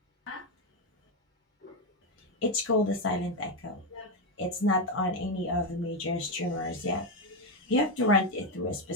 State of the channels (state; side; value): normal; both; correlation 0.08